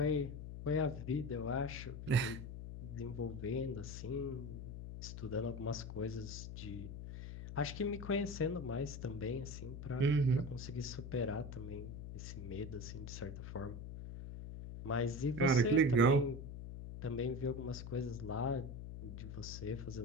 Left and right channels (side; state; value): left; noise; hum, 8 dB below the sound